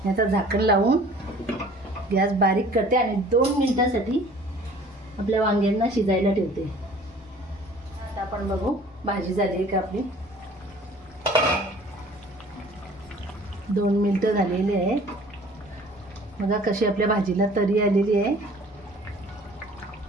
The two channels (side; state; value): both; normal; correlation 0.50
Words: याचं झाकण लावून गॅस बारीक करते आणि 2 मिनिटांसाठी आपल्या वांग्यांना शिजायला ठेवते. आता आपण बघू भाजी झाली आहे का आपली. 2 मिनिटं झालेली आहे. बघा कशी आपल्या भाजीला तरी आलेली आहे.